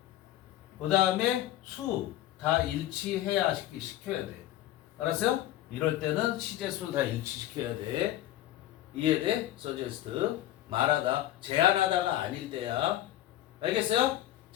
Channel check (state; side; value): quieter; right; 13.7 dB